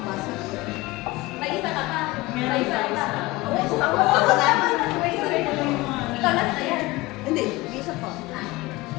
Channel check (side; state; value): right; quieter; 20.7 dB